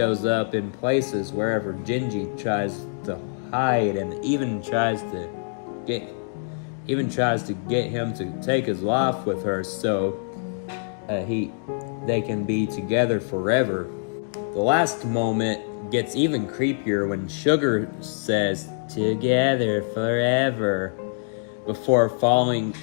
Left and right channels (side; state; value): right; silent; digital silence